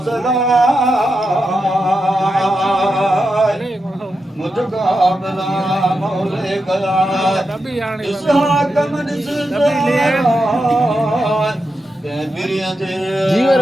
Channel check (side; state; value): both; normal; correlation 0.87